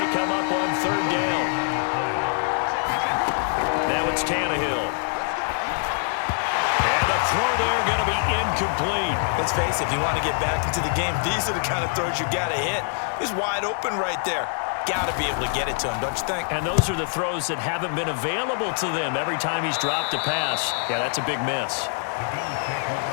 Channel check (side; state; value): right; silent; 62 dB below the other